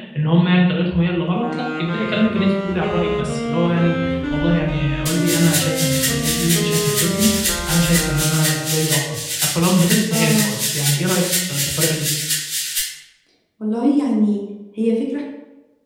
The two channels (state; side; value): identical; both; correlation 1.00